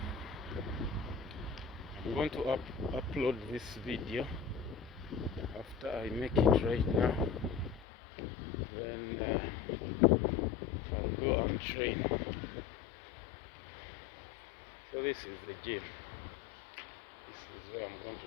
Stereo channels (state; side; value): drops out; right; at 7.9 s